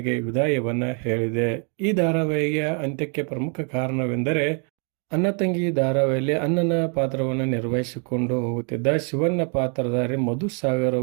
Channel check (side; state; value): left; quieter; 39.4 dB